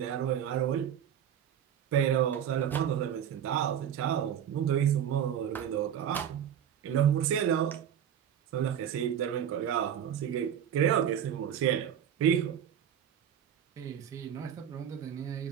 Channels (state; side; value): quieter; left; 9.4 dB